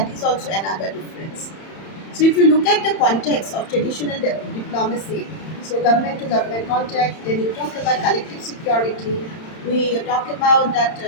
is also another difference. So, if you look at the context of traditional diplomacy, so government to government contact, then you talk about collective security, we talk about that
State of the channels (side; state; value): right; late; 31 ms